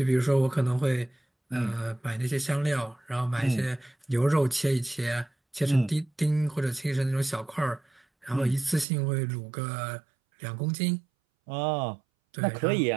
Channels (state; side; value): drops out; left; at 8.8 s